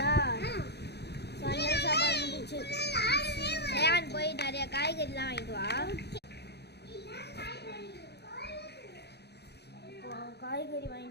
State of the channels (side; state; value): right; late; 0.48 ms